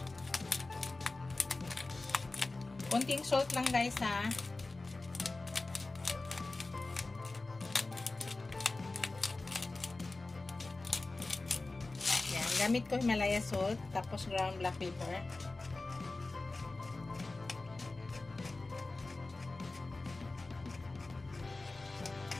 Konting salt lang guys ha. Yan, gamit ko Himalaya salt, tapos ground black pepper.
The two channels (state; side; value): quieter; right; 3.3 dB